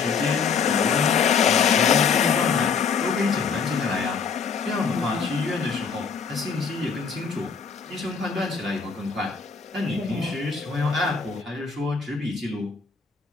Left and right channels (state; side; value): quieter; right; 5.8 dB